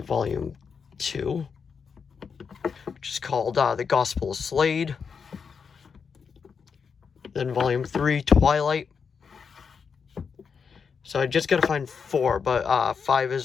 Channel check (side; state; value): right; quieter; 6.0 dB